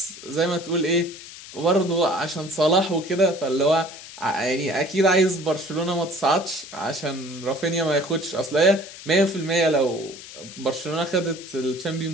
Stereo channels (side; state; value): left; noise; hiss, 15 dB below the sound